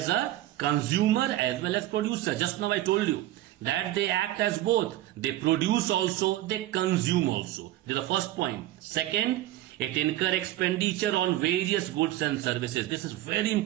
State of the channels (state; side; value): quieter; left; 15.0 dB